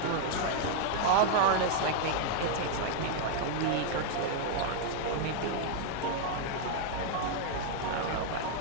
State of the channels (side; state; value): both; different; correlation 0.00